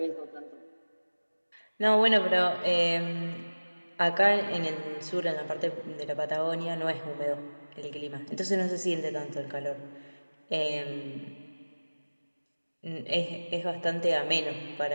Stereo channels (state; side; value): inverted; both; correlation -1.00